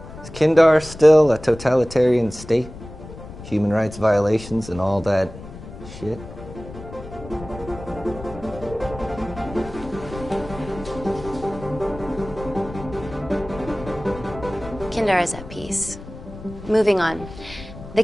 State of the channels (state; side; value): noise; left; rumble, 14 dB below the sound